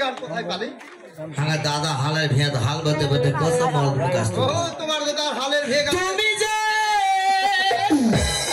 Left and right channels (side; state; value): both; identical; correlation 1.00